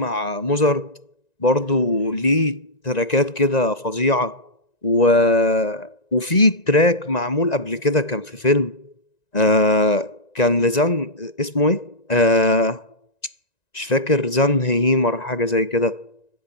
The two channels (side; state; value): right; late; 1.9 ms